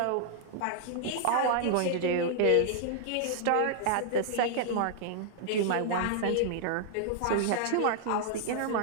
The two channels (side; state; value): both; different; correlation -0.01